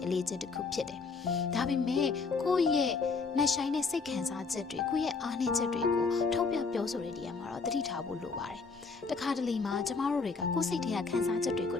အလေးချက်တစ်ခုဖြစ်တယ်။ဒါပေမဲ့ကိုယ့်ရဲ့နှက်ဆိုင်တဲ့စိတ်ခံစားချက်တွေကိုယ့်ရဲ့အားနည်းချက်တွေကိုထုတ်ပြပြောဆိုတဲ့နေရာမှာတော့သတိထားဖို့လိုပါတယ်။တခါတလေမှာကျမတို့တွေကကိုယ်စိတ်ထဲကခံစားချက်တွေကို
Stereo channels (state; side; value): quieter; right; 4.6 dB